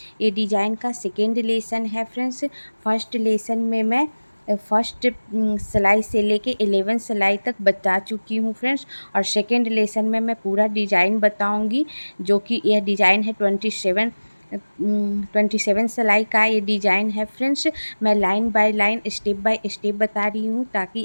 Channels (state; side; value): inverted; both; correlation -1.00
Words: ये डिज़ाइन का सेकेंड लेसन है फ्रेंड्स। फर्स्ट लेसन में मैं फर्स्ट सिलाई से लेके 11 सिलाई तक बता चुकी हूँ फ्रेंड्स। और सेकेंड लेसन में मैं पूरा डिज़ाइन बताऊँगी, जो कि यह डिज़ाइन है 27 सिलाई का ये डिज़ाइन है फ्रेंड्स। मैं line by line step by step बता रही हूँ,